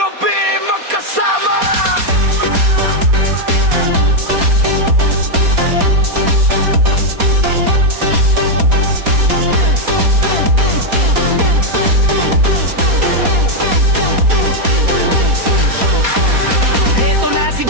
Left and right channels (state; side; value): late; left; 4.2 ms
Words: magkasama. Eto na si